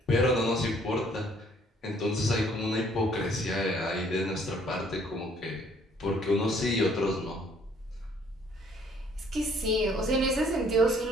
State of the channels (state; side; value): normal; both; correlation 0.62